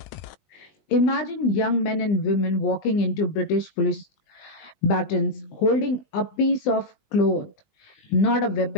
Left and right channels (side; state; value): right; late; 20 ms